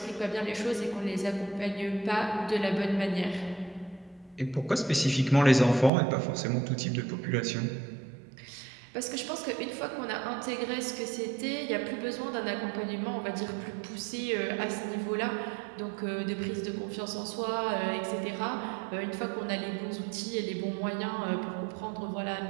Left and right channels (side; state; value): left; drops out; at 5.9 s